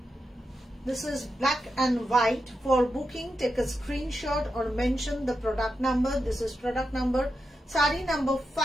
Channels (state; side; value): normal; both; correlation 0.87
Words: This is black and white. For booking, take a screenshot or mention the product number. This is product number, sari number